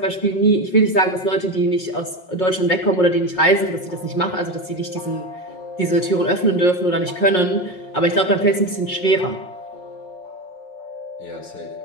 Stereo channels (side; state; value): right; late; 5.5 ms